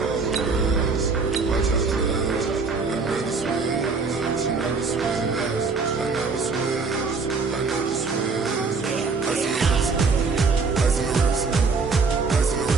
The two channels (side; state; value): left; quieter; 4.5 dB